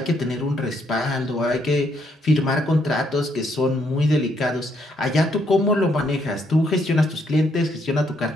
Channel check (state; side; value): normal; both; correlation 0.73